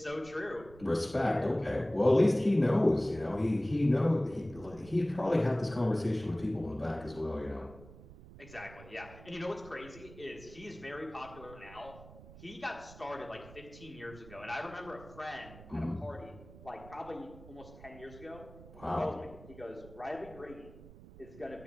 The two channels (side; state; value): right; noise; rumble, 18 dB below the sound